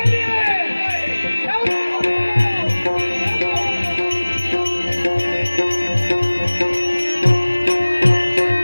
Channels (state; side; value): inverted; both; correlation -1.00